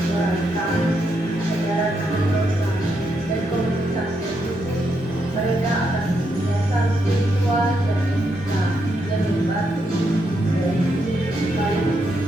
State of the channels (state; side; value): normal; both; correlation 0.80